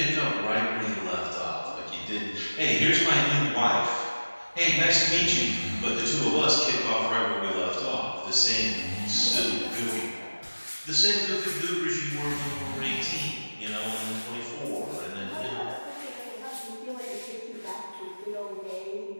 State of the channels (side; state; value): both; inverted; correlation -1.00